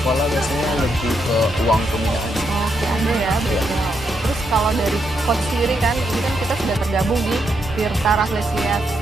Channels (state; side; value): normal; both; correlation 0.79